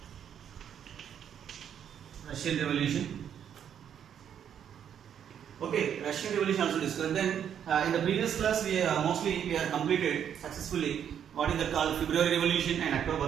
Russian Revolution. Okay, Russian Revolution also discussed. Then in the previous class we have completed successfully what is that called February Revolution and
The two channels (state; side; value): quieter; left; 8.9 dB